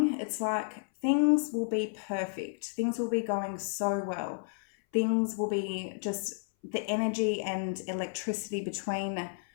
it's like things will be perfect. Things will be going so well. Things will be just, the energy and electricity between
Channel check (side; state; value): right; silent; 57 dB below the other